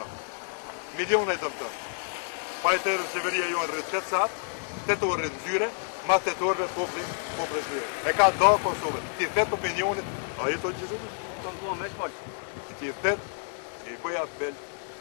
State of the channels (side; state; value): right; silent; 59 dB below the other